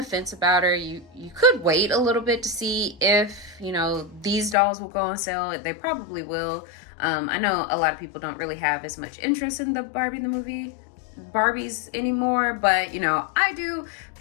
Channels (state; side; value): drops out; right; at 4.5 s